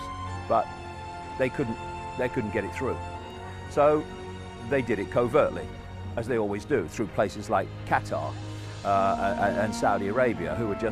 but they couldn't get it through. So they did it covertly, as they always do, through places like Qatar and Saudi Arabia, who were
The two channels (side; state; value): both; identical; correlation 1.00